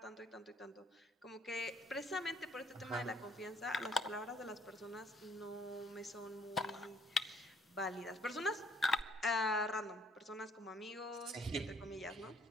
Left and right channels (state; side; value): normal; both; correlation 0.63